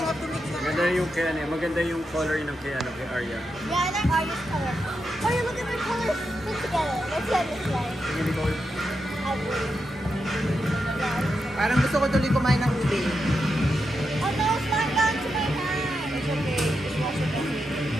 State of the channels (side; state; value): both; normal; correlation 0.86